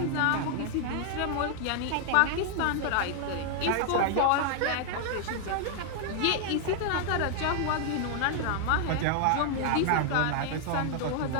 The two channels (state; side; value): different; both; correlation 0.00